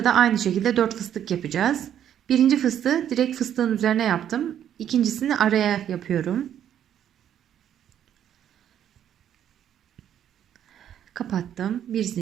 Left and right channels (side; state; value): left; quieter; 10.0 dB